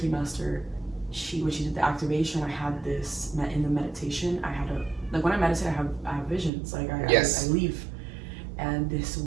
master, when she did the activation, I had this, in the meditation, like when I meditate, I have visions, like I leave. And this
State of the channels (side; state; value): left; drops out; at 6.5 s